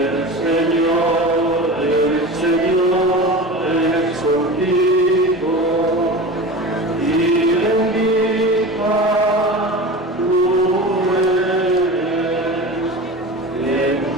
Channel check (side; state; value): both; normal; correlation 0.31